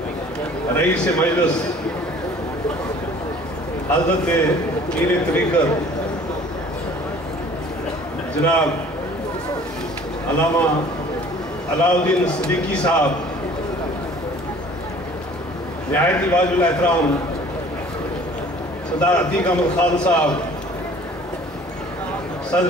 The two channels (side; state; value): both; normal; correlation 0.51